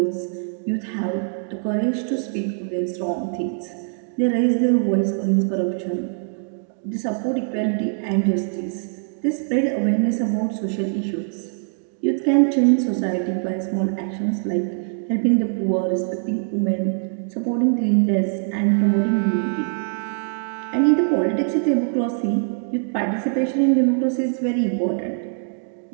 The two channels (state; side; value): silent; left; 64 dB below the other